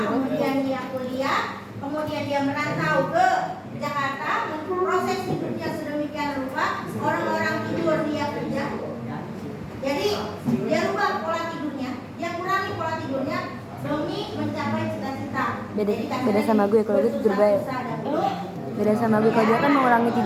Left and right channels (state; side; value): identical; both; correlation 1.00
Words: kemudian dia kuliah, kemudian dia merantau ke Jakarta, proses hidupnya sedemikian rupa, orang-orang tidur dia kerja. Jadi dia rubah pola tidurnya, dia kurangi pola tidurnya demi mencapai cita-cita. Beda sama gue, kalau gue tidur baik. Beda sama gue, kalau dia kan mengurangi